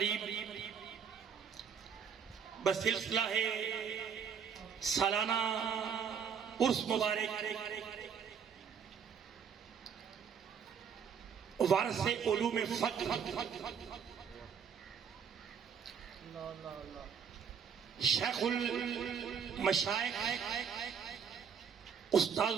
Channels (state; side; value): quieter; left; 7.1 dB